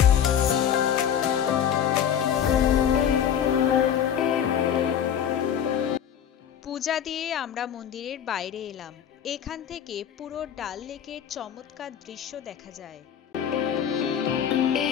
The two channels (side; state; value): right; quieter; 9.1 dB